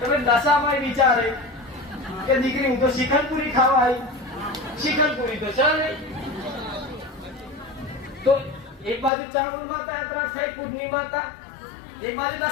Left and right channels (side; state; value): right; drops out; at 9.1 s